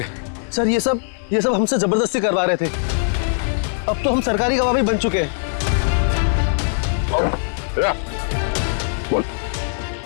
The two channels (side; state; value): right; silent; digital silence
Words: सर ये सब हमसे जबरदस्ती करवा रहे थे। अब तो हम सरकारी गवाह भी बन चुके हैं। बोल।